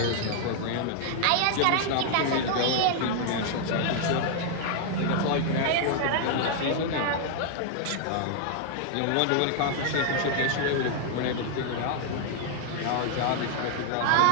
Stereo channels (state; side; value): different; both; correlation -0.01